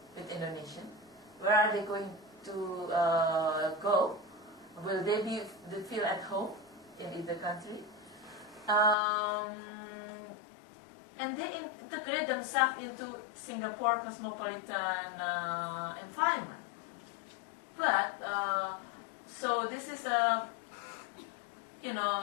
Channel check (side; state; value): right; drops out; at 9.0 s